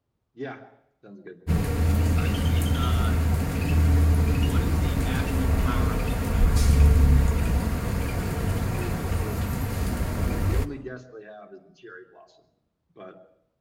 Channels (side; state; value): both; identical; correlation 1.00